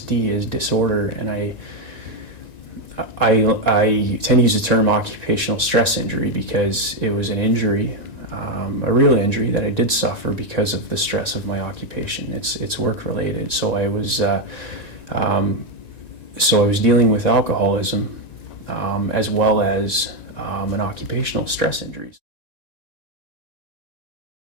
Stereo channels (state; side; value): late; right; 1.9 ms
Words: is disorder, and I tend to use the term occupational stress injury because it was an injury, a real injury that I did suffer because of the stress of my occupation. It's work related. So I was dealing with alcoholism as well as an occupational stress injuries.